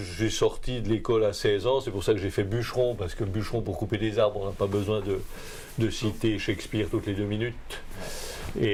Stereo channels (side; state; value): both; identical; correlation 1.00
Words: sorti de l'école à 16 ans, c'est pour ça que j'ai fait bûcheron, parce que bûcheron pour couper des arbres, on n'a pas besoin de citer Shakespeare toutes les 2 minutes.